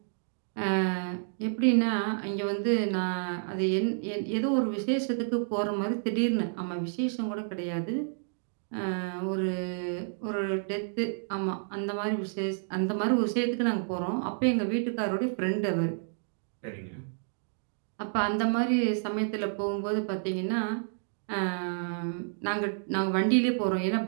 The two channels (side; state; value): left; silent; digital silence